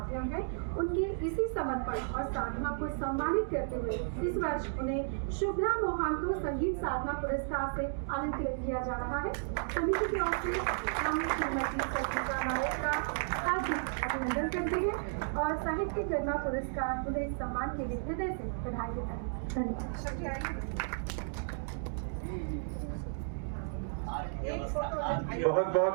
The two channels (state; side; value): silent; left; digital silence